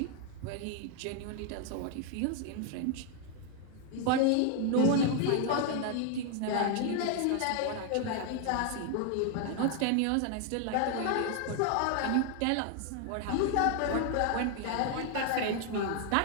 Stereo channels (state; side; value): different; both; correlation 0.00